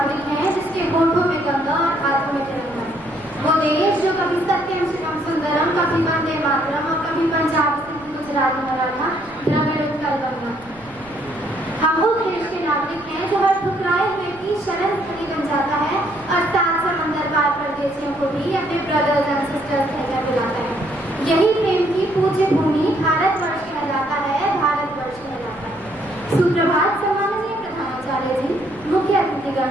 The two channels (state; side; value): noise; right; rumble, 25 dB below the sound